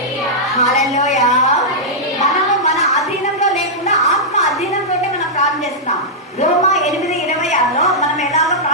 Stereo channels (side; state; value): both; normal; correlation -0.10